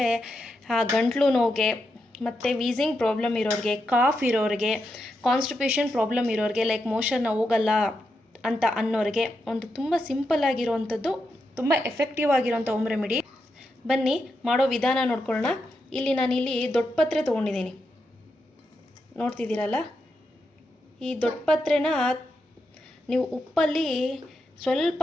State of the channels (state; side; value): normal; both; correlation 0.85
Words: ಗಂಟ್ಲು ನೋವಿಗೆ ಮತ್ತು ವೀಸಿಂಗ್ ಪ್ರಾಬ್ಲಮ್ ಇರೋರಿಗೆ, ಕಾಫ್ ಇರೋರಿಗೆ, ಕಾನ್ಸ್ಟಿಪೇಷನ್ ಪ್ರಾಬ್ಲಮ್ ಇರೋರಿಗೆ, ಲೈಕ್ ಮೋಷನ್ ಹೋಗಲ್ಲ ಅಂತ ಅನ್ನೋರಿಗೆ ಒಂದು ತುಂಬ ಸಿಂಪಲ್ ಆಗಿರೋವಂಥದ್ದು, ತುಂಬ ಎಫೆಕ್ಟಿವ್ ಆಗಿರೋಂಥ ಹೋಮ್ ರೆಮಿಡಿ. ಬನ್ನಿ ಮಾಡೋ ವಿಧಾನ ನೋಡ್ಕೊಳ್ಳೋಣ. ನಾನಿಲ್ಲಿ ದೊಡ್ಡ ಪತ್ರೆ ತೊಗೊಂಡಿದ್ದೀನಿ, ನೋಡ್ತಿದ್ದೀರಲ್ಲ. ಈ ದೊಡ್ಡ ಪತ್ರೆನ ನೀವು ಉಪ್ಪಲ್ಲಿ ಸ್ವಲ್ಪ,